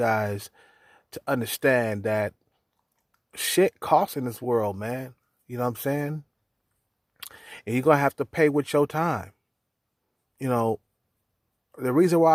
to understand that shit costs in this world, man. You know what I'm saying? And you're going to have to pay with your time. You know, the reason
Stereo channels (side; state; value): both; identical; correlation 1.00